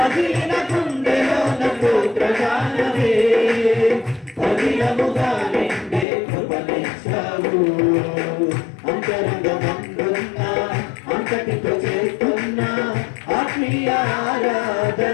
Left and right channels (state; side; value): drops out; right; at 6.1 s